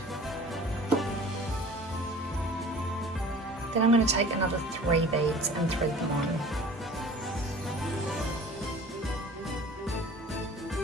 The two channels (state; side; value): normal; both; correlation 0.45